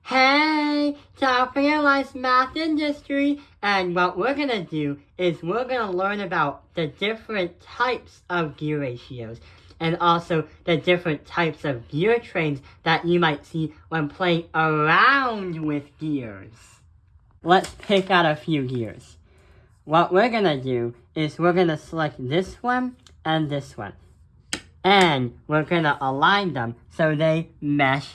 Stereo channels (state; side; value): identical; both; correlation 1.00